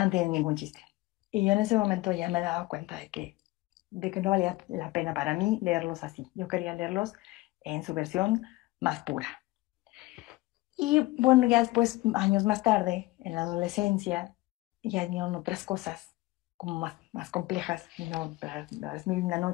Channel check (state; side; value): quieter; right; 20.0 dB